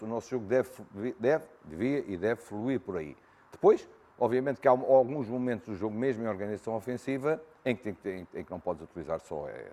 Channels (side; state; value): both; identical; correlation 1.00